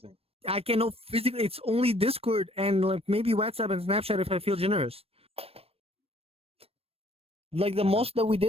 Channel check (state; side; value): late; left; 0.28 ms